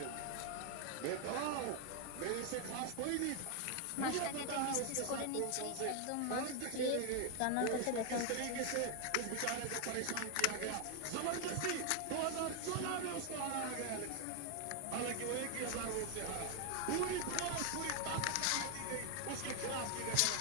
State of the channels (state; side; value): different; both; correlation 0.00